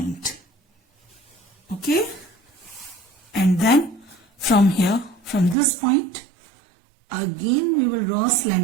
Okay? And then from here, from this point, again we will draw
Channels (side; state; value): left; drops out; at 5.6 s